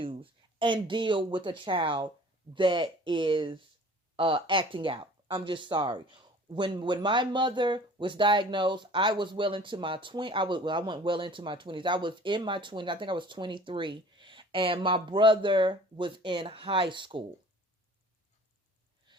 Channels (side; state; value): both; normal; correlation 0.48